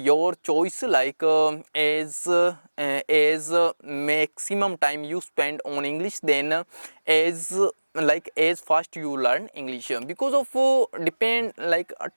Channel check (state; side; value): inverted; both; correlation -1.00